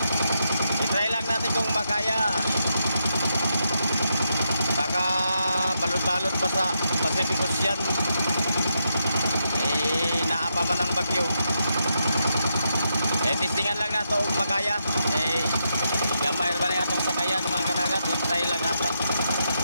I-try lang natin kung makaya. Baka balot-balot pa sa Pacific Ocean. Naapa man ang bagyo. Testingan lang nato kung makaya. Gamay ba na itong sakayan mga kadagat. I-try lang natin.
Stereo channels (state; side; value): inverted; both; correlation -0.82